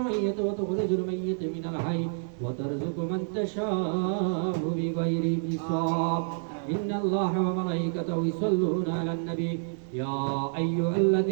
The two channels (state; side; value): silent; left; digital silence